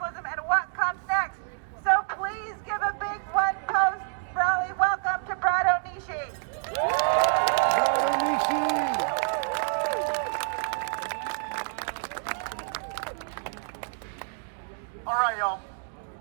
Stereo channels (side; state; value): left; silent; digital silence